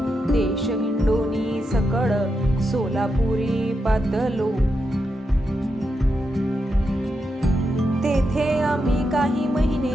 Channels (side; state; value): both; normal; correlation 0.85